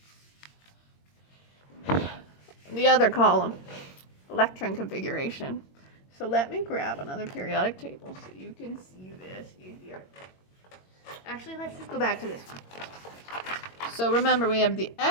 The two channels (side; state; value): right; late; 22 ms